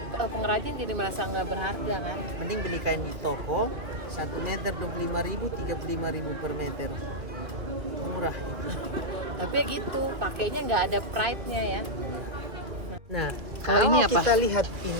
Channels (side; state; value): left; late; 2.3 ms